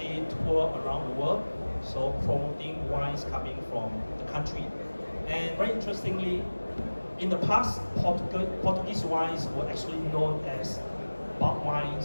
tour around the world, so promoting wines coming from the country. And very interestingly, in the past, Portuguese wines were actually known as bulk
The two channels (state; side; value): inverted; both; correlation -1.00